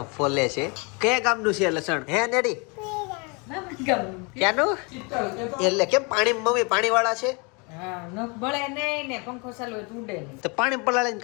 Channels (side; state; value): right; quieter; 30.9 dB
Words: ફોલે છે. કયા ગામનું છે લસણ? હે નેરી ક્યાંનું? એટલે કેમ પાણી મમ્મી પાણી વાળા છે? બળે નહીં ને પંખો ચાલુ હોય તો ઉડે નહીં. તો પાણી પલાળીને